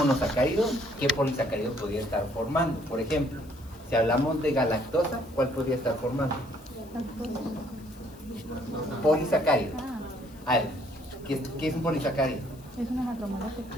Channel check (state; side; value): noise; left; hiss, 26 dB below the sound